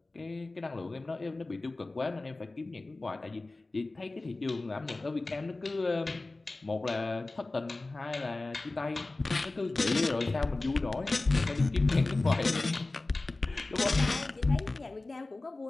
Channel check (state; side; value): quieter; right; 3.1 dB